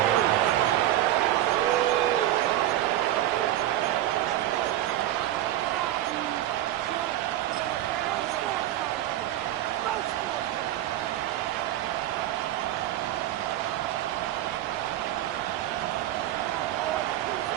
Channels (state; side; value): quieter; left; 13.5 dB